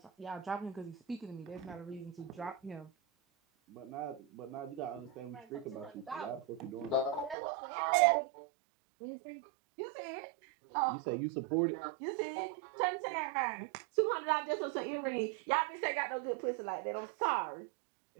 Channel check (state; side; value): drops out; left; at 7.4 s